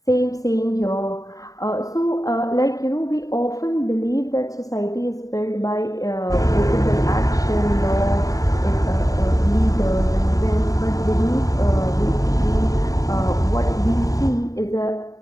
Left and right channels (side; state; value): right; late; 0.17 ms